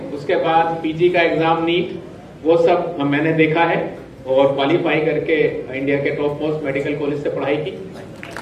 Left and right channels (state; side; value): identical; both; correlation 1.00